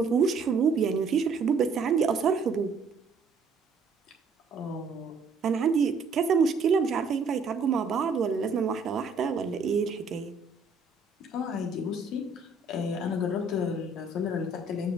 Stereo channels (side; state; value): left; quieter; 4.0 dB